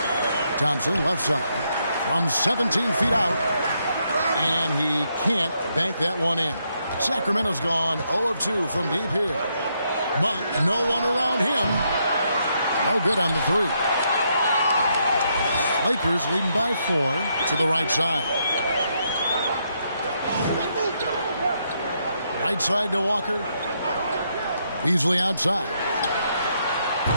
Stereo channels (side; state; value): both; inverted; correlation -0.77